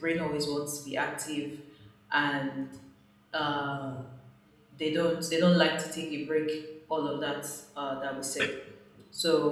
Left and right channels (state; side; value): identical; both; correlation 1.00